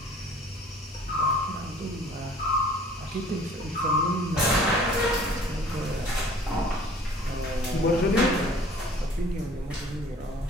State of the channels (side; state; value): both; normal; correlation 0.51